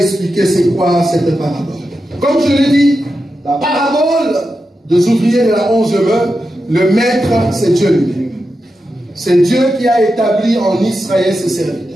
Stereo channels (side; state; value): both; normal; correlation 0.89